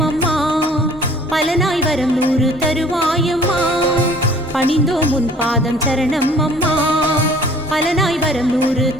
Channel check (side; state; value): both; normal; correlation 0.53